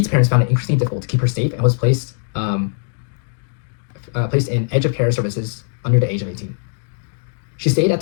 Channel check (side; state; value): right; silent; digital silence